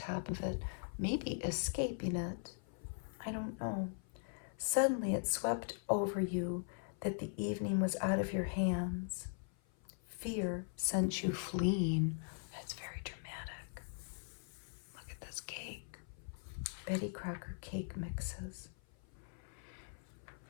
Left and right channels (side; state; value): right; silent; 51 dB below the other